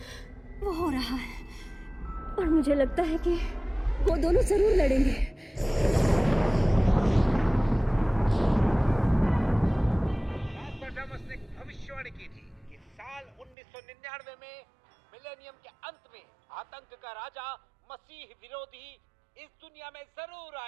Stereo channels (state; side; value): drops out; left; at 13.6 s